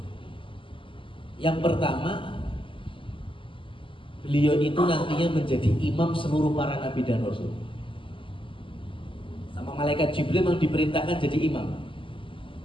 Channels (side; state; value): right; late; 0.25 ms